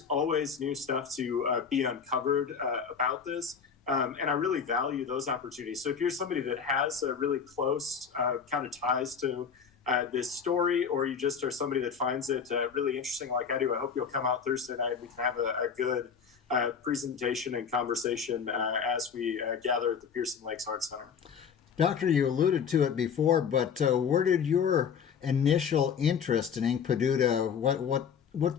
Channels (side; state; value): right; quieter; 6.7 dB